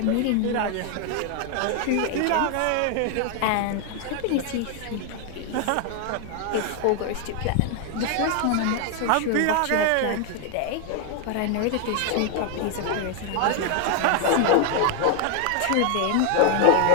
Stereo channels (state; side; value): different; both; correlation 0.00